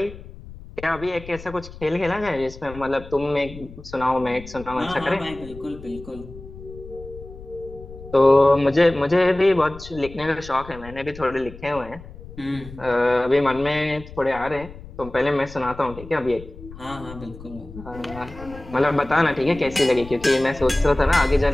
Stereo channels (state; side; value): noise; left; rumble, 16 dB below the sound